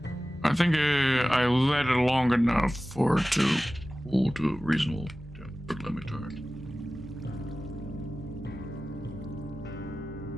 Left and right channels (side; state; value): both; normal; correlation 0.96